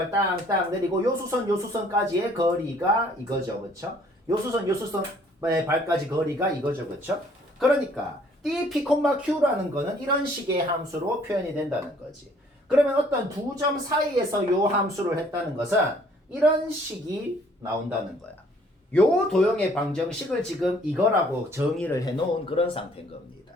땅땅 내리고 요 수선까지의 거리가 이거죠. 그렇죠? 요 수선의 발까지 거리가 이거죠. 그렇죠? 그러니까 dp, q라는 거는 이런 식의 함수로 표현이 된다는 거지. 그러면 어떤 두 점 사이에서 요 함수를 했다는 것은 이런 식이 나온다는 거야. 요 도형의 방정식을 지금 이거라고 정의를 해놓은 그런 상태인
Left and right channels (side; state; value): both; normal; correlation 0.60